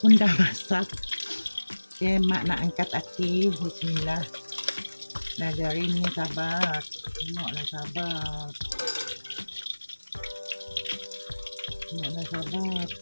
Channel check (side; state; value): both; inverted; correlation -1.00